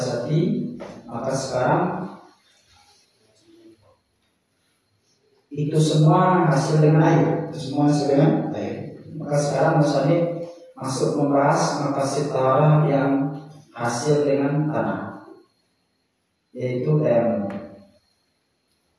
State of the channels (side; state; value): both; identical; correlation 1.00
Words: Maka sekarang itu semua hasil dengan air, Maka sekarang musannif masuk membahas maqasid taharah yang hasil dengan tanah, yaitu tayamum.